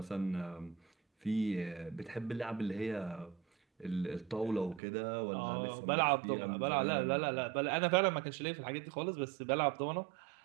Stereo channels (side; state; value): left; drops out; at 4.8 s